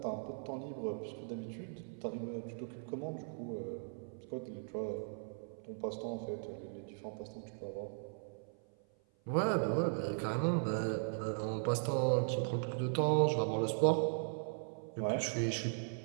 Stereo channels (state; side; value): silent; left; 52 dB below the other